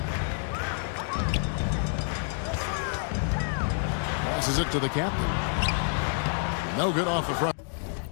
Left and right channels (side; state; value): right; silent; 59 dB below the other